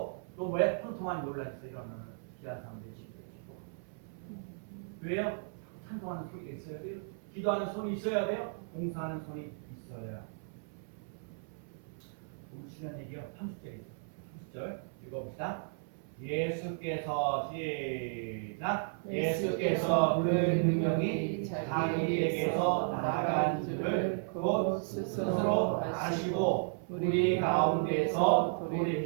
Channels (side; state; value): left; silent; 55 dB below the other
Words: 또 뭐야? 통통한 논란에서 일어나는 귀한 삶 되시기를 기도합니다. 왜요? 찬송하는 소리가 있어야 돼요. 기도하는 손이 있어야 돼요. 봉사하는 손이 있어야. 우리 중요한 얘기요. 30절에 있어요. 30절 읽어봅시다. 예수께서 시작. 예수께서 그 능력이 자기에게서 나간 줄을 곧 스스로 아시고 우리 가운데서